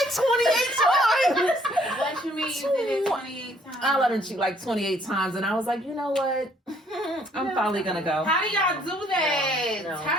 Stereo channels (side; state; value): both; normal; correlation 0.64